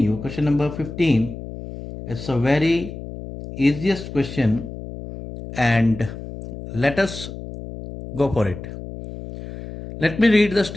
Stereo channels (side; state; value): left; noise; hum, 11 dB below the sound